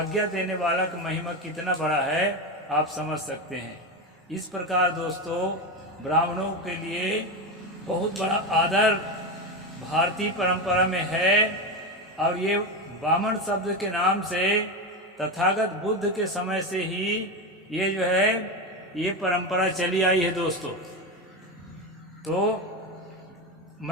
देने वाला का महिमा कितना बड़ा है आप समझ सकते हैं। इस प्रकार दोस्तों ब्राह्मणों के लिए बहुत बड़ा आदर भारतीय परंपरा में है। और ये वामन शब्द के नाम से तथागत बुद्ध के समय से ही ये जो है ये परंपरा चली आई है दोस्तों। तो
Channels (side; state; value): both; normal; correlation 0.16